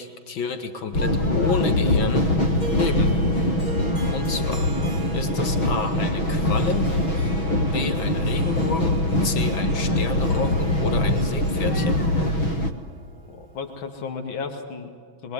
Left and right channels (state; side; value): late; right; 6.2 ms